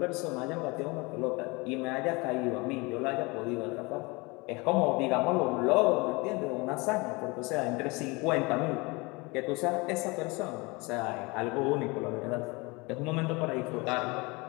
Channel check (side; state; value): right; quieter; 26.1 dB